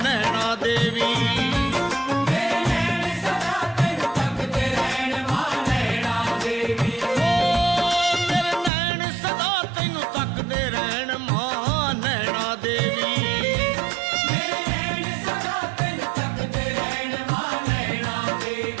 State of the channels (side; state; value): left; drops out; at 8.7 s